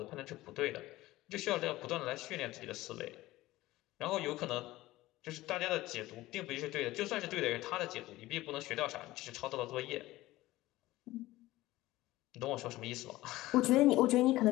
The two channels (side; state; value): right; quieter; 17.4 dB